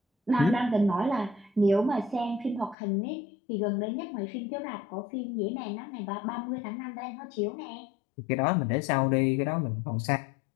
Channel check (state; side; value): drops out; right; at 2.8 s